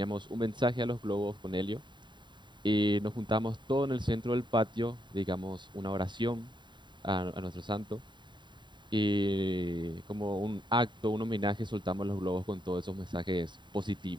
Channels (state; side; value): late; left; 0.22 ms